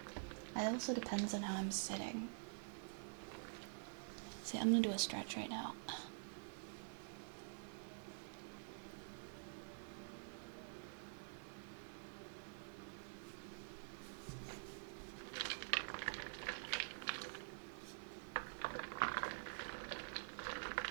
it also depends on how I'm sitting. See, I'm gonna do a stretch right now.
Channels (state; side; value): silent; left; digital silence